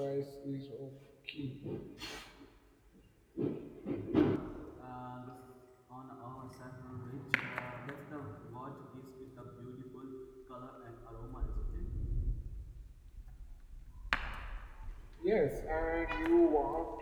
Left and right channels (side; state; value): both; identical; correlation 1.00